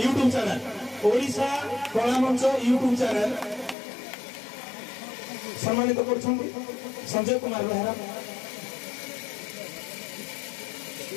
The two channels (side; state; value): right; drops out; at 3.8 s